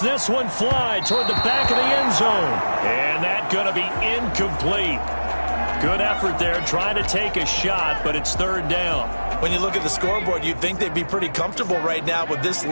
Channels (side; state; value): both; inverted; correlation -1.00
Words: one fly toward the back of the end zone. And that's going to be incomplete. Good effort there trying to take a shot, but it's 3rd down. When you look at the scoreboard, you'd think they'd be pretty comfortable right now with this